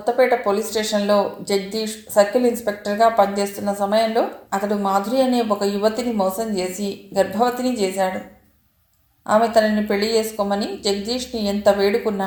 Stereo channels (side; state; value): both; identical; correlation 1.00